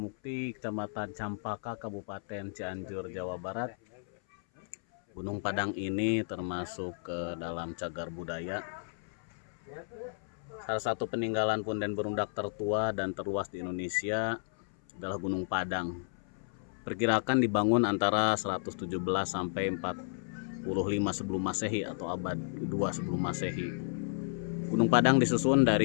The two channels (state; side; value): silent; right; 56 dB below the other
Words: Kecamatan Campaka, Kabupaten Cianjur, Jawa Barat. Gunung Padang ini termasuk ke dalam cagar budaya. Salah satu peninggalan punden berundak tertua dan terluas di Indonesia adalah Gunung Padang. Perkirakan dibangun antara 117 sampai 45 sebelum Masehi atau abad kedua sebelum Masehi. Gunung Padang disusun